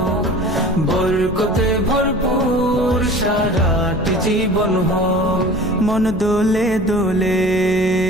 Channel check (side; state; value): right; noise; hum, 15 dB below the sound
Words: বরকতে ভরপুর সারাটি জীবন হোক। মন দোলে দোলে